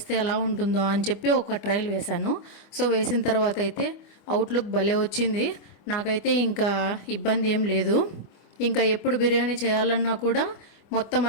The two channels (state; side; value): late; right; 25 ms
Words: ఎలా ఉంటుందో అని చెప్పి ఒక ట్రయల్ వేశాను. సో వేసిన తర్వాత అయితే అవుట్లుక్ భలే వచ్చింది. నాకైతే ఇంకా ఇబ్బంది ఏం లేదు. ఇంకా ఎప్పుడు బిర్యానీ చేయాలన్నా కూడా మొత్తం